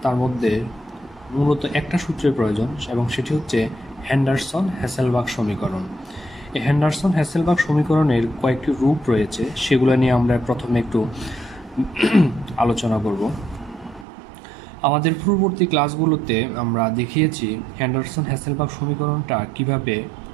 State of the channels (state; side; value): drops out; left; at 14.1 s